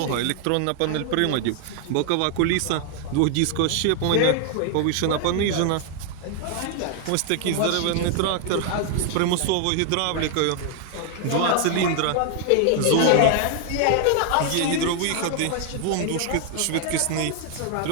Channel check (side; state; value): both; different; correlation 0.00